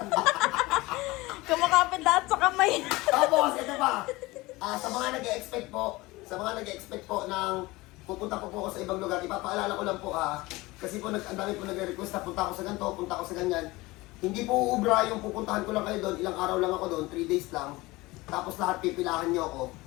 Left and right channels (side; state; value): right; quieter; 21.1 dB